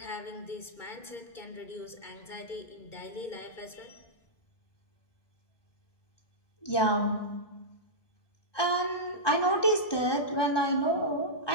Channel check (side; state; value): right; late; 1.2 ms